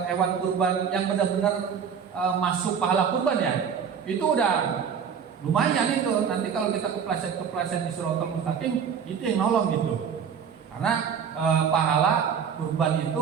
hewan kurban yang benar-benar masuk pahala kurban ya, itu udah lumayan itu. Nanti kalau kita kepleset di Shiratal Mustaqim, itu yang nolong gitu. Karena pahala kurban itu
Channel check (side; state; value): left; quieter; 7.2 dB